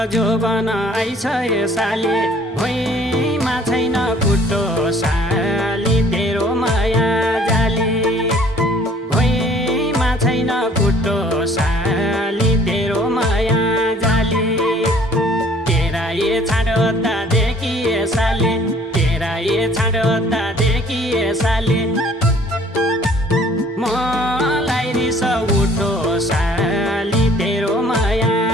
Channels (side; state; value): both; normal; correlation 0.56